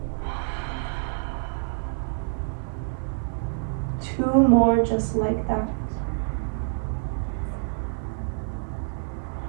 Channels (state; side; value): silent; left; digital silence